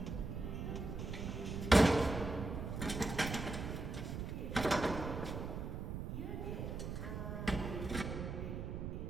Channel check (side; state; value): right; noise; rumble, 4 dB below the sound